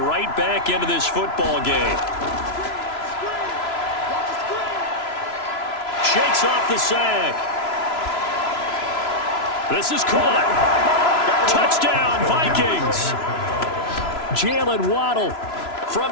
back into this football game. Shakes off the sack. This is caught. Touchdown, Vikings. Jalen Waddle from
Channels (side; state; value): right; late; 3.0 ms